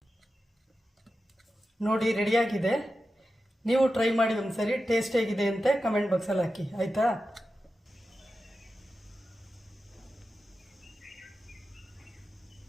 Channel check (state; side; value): normal; both; correlation 0.92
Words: ನೋಡಿ ರೆಡಿಯಾಗಿದೆ. ನೀವು ಟ್ರೈ ಮಾಡಿ ಒಂದ್ಸರಿ, ಟೇಸ್ಟ್ ಹೇಗಿದೆ ಅಂತ ಕಮೆಂಟ್ ಬಾಕ್ಸಲ್ಲಿ ಹಾಕಿ, ಆಯಿತಾ?